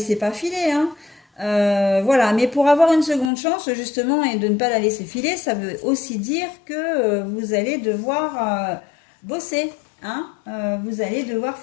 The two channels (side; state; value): right; drops out; at 3.3 s